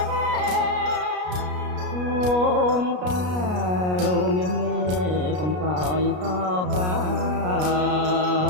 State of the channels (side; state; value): left; late; 33 ms